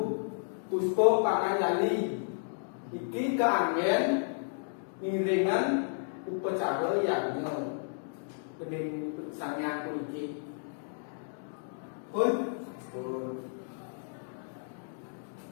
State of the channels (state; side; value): silent; right; digital silence